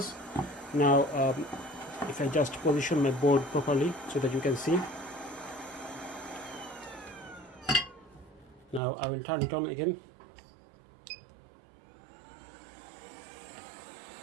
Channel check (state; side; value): drops out; left; at 8.8 s